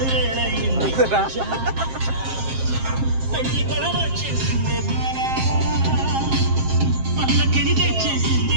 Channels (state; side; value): late; left; 7.5 ms